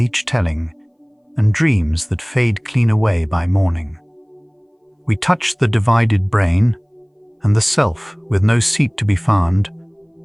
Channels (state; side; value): identical; both; correlation 1.00